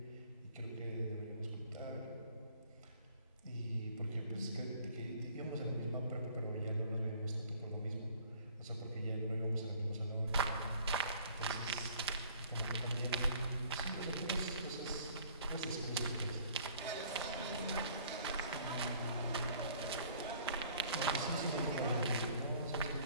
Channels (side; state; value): both; inverted; correlation -0.55